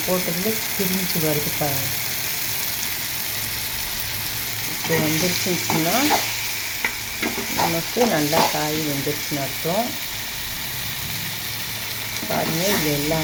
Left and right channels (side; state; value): both; identical; correlation 1.00